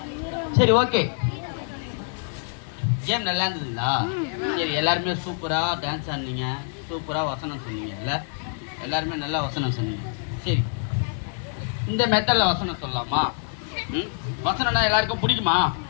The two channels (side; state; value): right; silent; digital silence